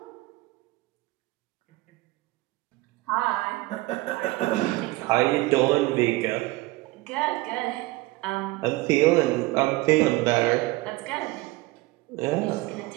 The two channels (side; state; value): left; quieter; 20.8 dB